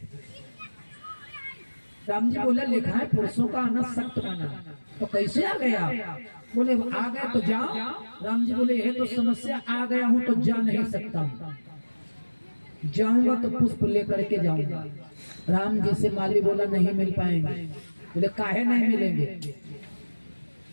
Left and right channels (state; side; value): inverted; both; correlation -1.00